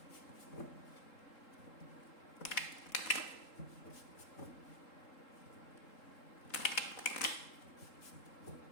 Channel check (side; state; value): right; late; 3.8 ms